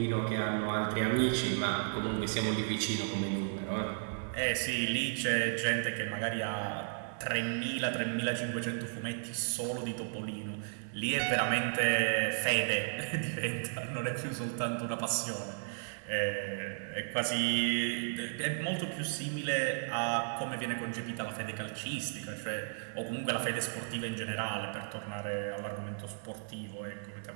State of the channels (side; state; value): left; silent; digital silence